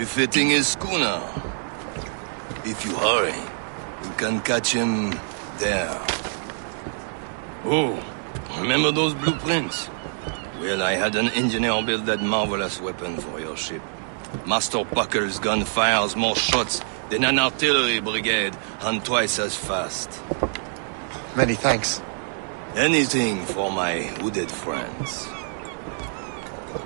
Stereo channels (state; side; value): silent; left; digital silence